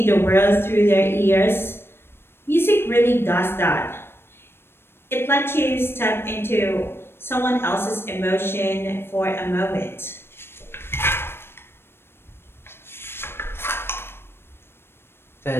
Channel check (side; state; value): right; late; 0.11 ms